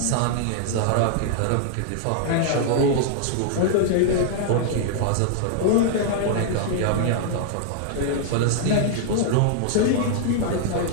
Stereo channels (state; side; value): different; both; correlation -0.01